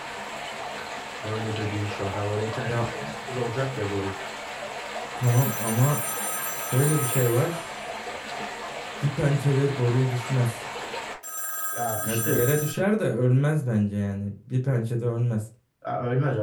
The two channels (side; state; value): both; identical; correlation 1.00